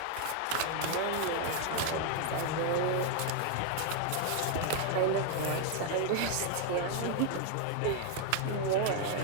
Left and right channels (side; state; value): both; different; correlation 0.00